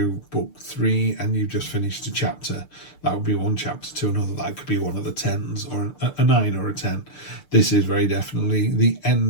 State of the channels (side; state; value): right; late; 6.7 ms